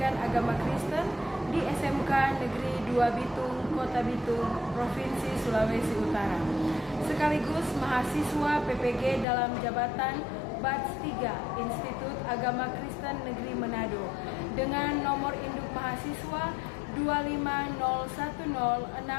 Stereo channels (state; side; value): drops out; right; at 9.2 s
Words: Agama Kristen di SMK Negeri 2 Bitung, Kota Bitung, Provinsi Sulawesi Utara. Sekaligus mahasiswa PPG dalam jabatan Batch 3 Institut Agama Kristen Negeri Manado dengan nomor induk mahasiswa